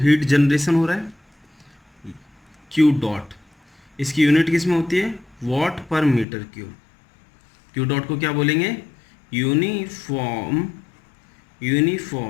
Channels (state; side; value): drops out; right; at 6.2 s